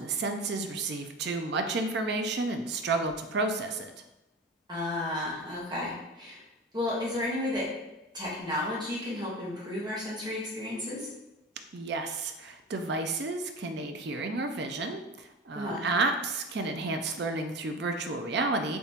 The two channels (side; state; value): both; normal; correlation 0.30